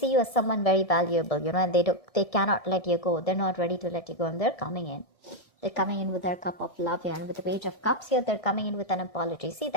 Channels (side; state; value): right; late; 1.7 ms